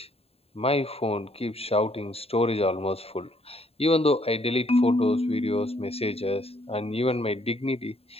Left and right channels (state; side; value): late; right; 0.29 ms